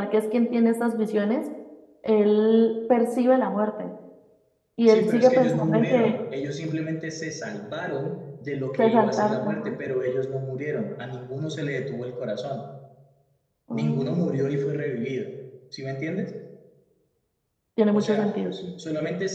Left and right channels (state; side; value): identical; both; correlation 1.00